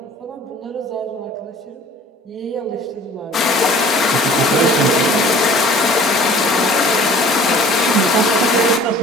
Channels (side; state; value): both; normal; correlation 0.49